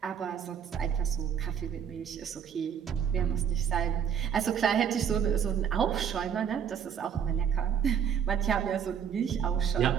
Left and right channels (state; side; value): quieter; left; 8.0 dB